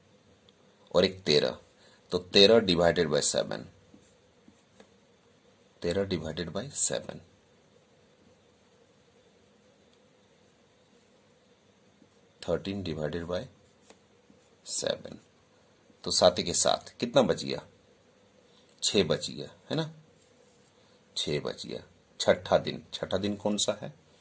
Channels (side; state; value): both; identical; correlation 1.00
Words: और 1 13, तो 13 divided by 7, 13 divided by 7, 13 divided by 7, तो 7 के 7 कितना बच गया 6 बच गया, है ना, 6 बच गया। छठा दिन कौन सा है